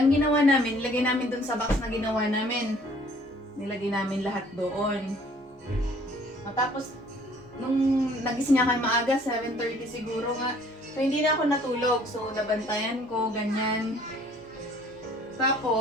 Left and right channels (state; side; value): normal; both; correlation 0.57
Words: ginawa namin, nilagay namin dun sa box na ginawa namin. Nilagay namin lahat doon. Tapos, nung nagising ako maaga, 7:30 siguro nga. So, hindi na ako natulog. So, nabantayan ko, ganyan.